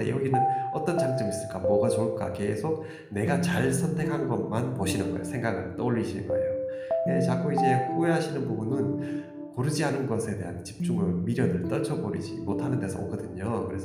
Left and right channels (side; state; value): both; identical; correlation 1.00